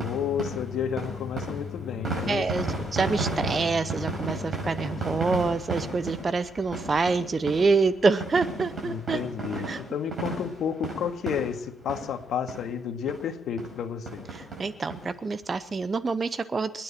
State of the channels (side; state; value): both; normal; correlation 0.75